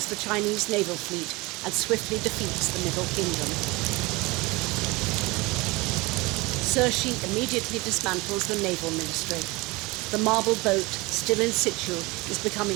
the Chinese naval fleet and swiftly defeats the Middle Kingdom. Cixi immediately dismantles the naval ministry. The marble boat, still in situ, is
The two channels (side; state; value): left; quieter; 23.4 dB